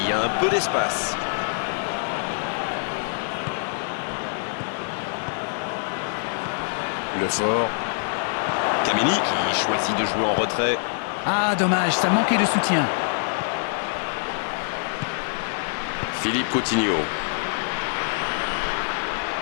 a un peu d'espace. Le fort. Kameni qui choisit de jouer en retrait. Ah, dommage, ça manquait de soutien. Philippe Coutinho.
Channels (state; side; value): silent; right; digital silence